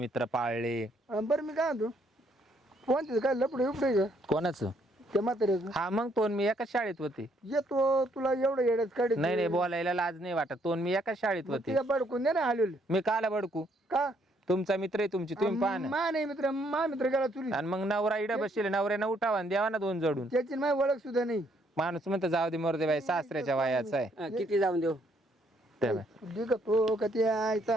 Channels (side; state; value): both; normal; correlation 0.69